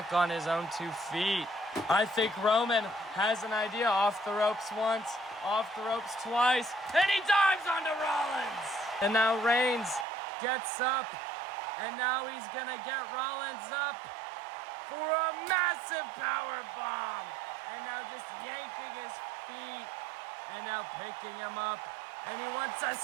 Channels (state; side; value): drops out; left; at 10.1 s